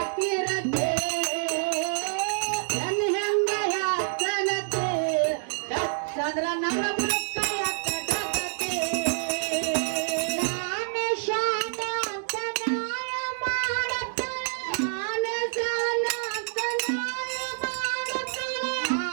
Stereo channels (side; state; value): left; silent; digital silence